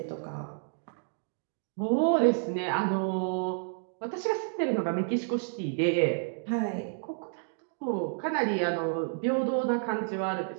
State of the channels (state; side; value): silent; left; digital silence